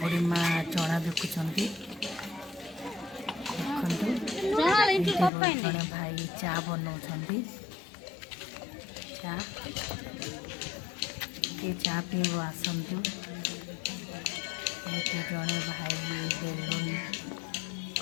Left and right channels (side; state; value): right; drops out; at 5.3 s